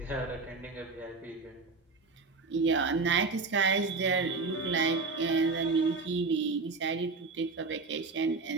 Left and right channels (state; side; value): quieter; left; 4.1 dB